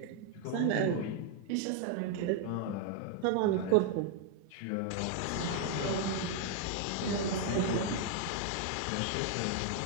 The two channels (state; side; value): different; both; correlation 0.00